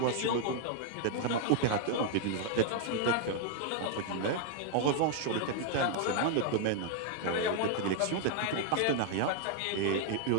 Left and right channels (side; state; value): both; different; correlation 0.00